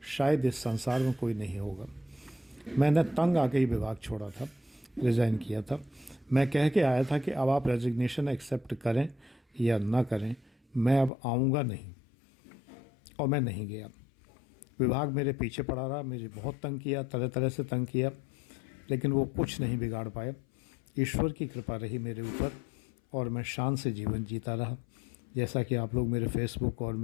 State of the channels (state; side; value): drops out; right; at 11.1 s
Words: शायद इस संसार में कोई नहीं होगा। मैंने तंग आके ही विभाग छोड़ा था, रिज़ाइन किया था। मैं कह के आया था कि अब आप रेजिग्नेशन एक्सेप्ट करें या ना करें, मैं अब आऊँगा नहीं, और मैं नहीं गया। विभाग मेरे पीछे पड़ा रहा, मुझे बहुत तंग किया, तरह तरह से तंग किया, लेकिन वो कुछ नहीं बिगाड़ पाया। ईश्वर की कृपा रही मेरे ऊपर और मैं शान से जीवन जीता रहा। जैसा कि आप लोग मेरे फेसबुक और